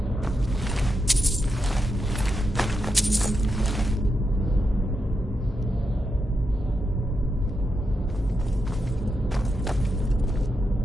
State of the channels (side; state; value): both; normal; correlation 0.86